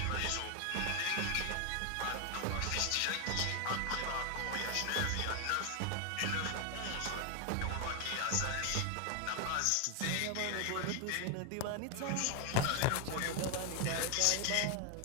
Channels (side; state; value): both; different; correlation 0.01